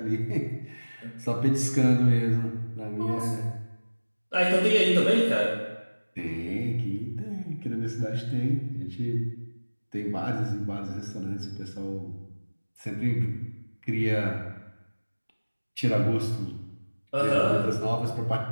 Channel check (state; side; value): inverted; both; correlation -1.00